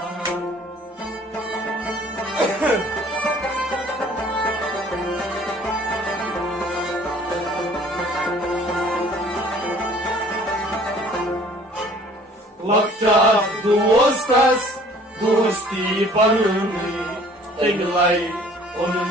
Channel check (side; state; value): both; normal; correlation 0.53